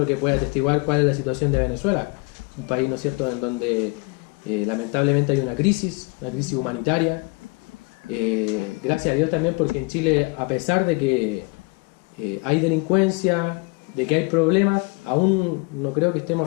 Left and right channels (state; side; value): quieter; right; 29.8 dB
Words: que puede atestiguar cuál es la situación de Venezuela, un país, ¿no es cierto?, en donde lamentablemente hay una crisis humanitaria. Gracias a Dios también, porque en Chile, a pesar de que hay delincuencia, de que hay problemas, aún no creo que